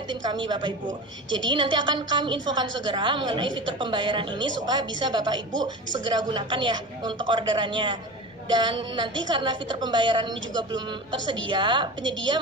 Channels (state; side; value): normal; both; correlation 0.30